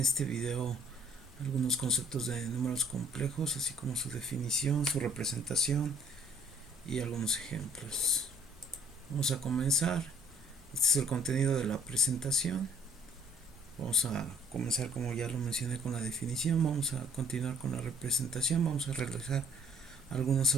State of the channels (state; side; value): normal; both; correlation 0.60